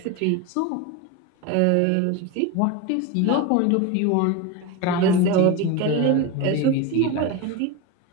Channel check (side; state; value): both; different; correlation 0.04